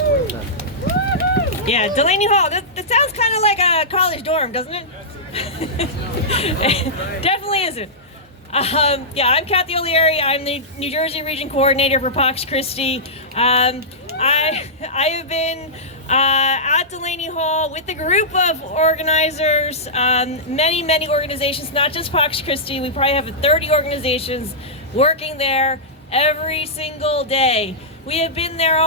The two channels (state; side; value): normal; both; correlation -0.14